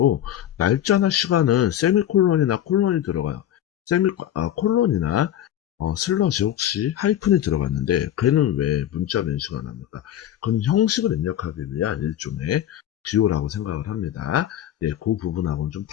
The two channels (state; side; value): quieter; right; 11.4 dB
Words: 날짜나 시간은 세미콜론이나 콜론이 들어가요. 콜론이나 슬러시 혹시 하이픈이 들어갔는데 걔는 왜 문자로 인식을 안 합니까? 그건 형식을 입력하기 위한 일종의 기호라고 생각을 합니다. 예, 그 부분하고는 좀